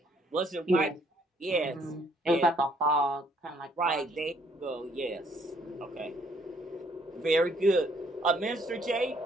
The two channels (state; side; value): normal; both; correlation 0.66